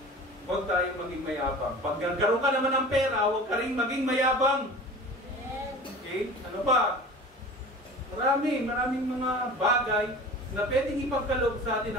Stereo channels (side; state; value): both; normal; correlation 0.39